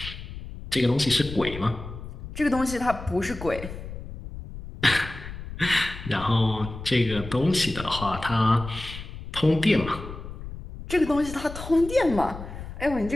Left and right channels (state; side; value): noise; left; rumble, 11 dB below the sound